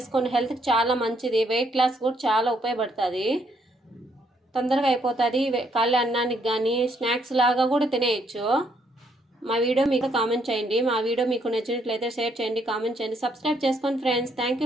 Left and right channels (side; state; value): both; normal; correlation 0.71